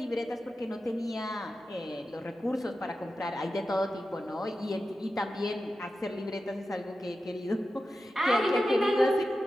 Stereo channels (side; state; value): both; normal; correlation 0.92